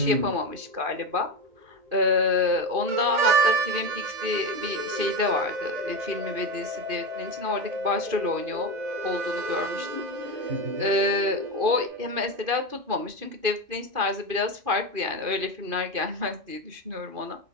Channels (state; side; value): late; left; 2.5 ms